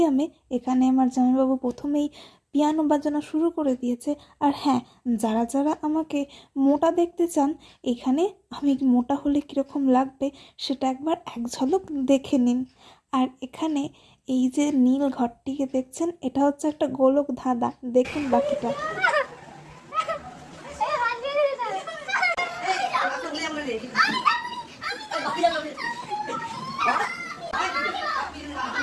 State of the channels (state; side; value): identical; both; correlation 1.00